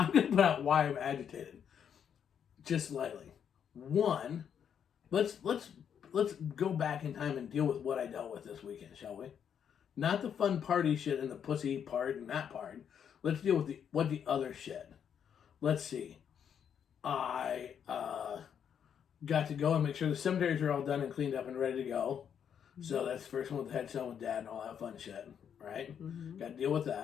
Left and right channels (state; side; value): quieter; right; 8.2 dB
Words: going to put out why I'm agitated. Just slightly. One, let's go back in time and deal with what I dealt with this weekend, shall we? Not the fun party shit and the pussy part and that part. Let's deal with the other shit. Let's see. I got to go and make sure the cemeteries are all done and cleaned up and ready to go. Mm-hmm. So that's the first one with the headstone with Dad and all that fun shit, right? Mm-hmm. Got to deal with